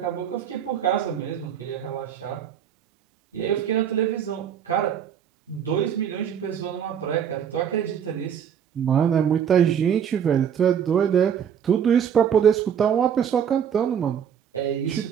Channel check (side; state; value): left; quieter; 8.4 dB